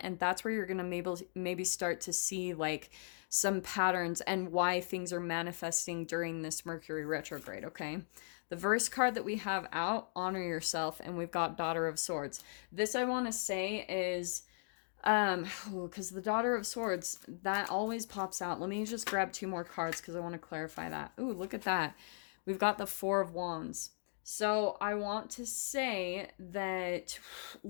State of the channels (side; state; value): right; silent; digital silence